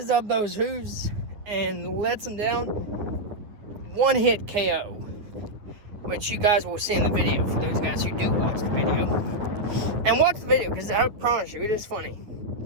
up those hooves and lets them down. One hit KO, which you guys will see in the video for those guys who do watch the video. And watch the video, because I promise you, it is funny.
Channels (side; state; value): left; late; 9.5 ms